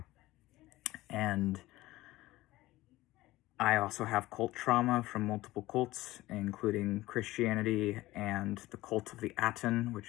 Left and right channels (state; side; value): quieter; right; 17.7 dB